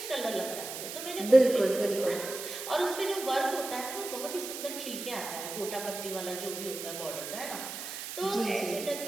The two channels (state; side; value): noise; right; hiss, 8 dB below the sound